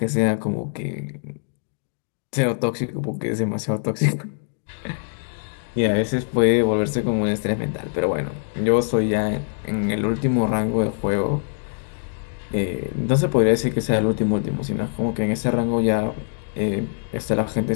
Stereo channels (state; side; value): silent; right; digital silence